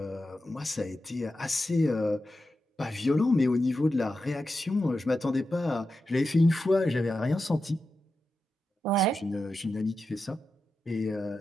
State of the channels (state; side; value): normal; both; correlation 0.90